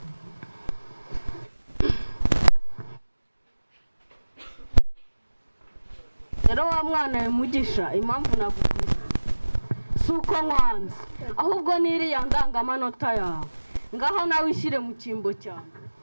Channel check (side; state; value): both; inverted; correlation -1.00